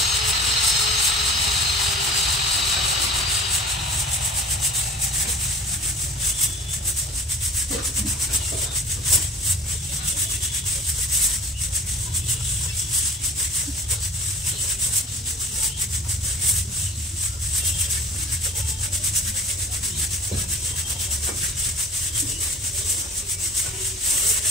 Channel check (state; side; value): normal; both; correlation 0.44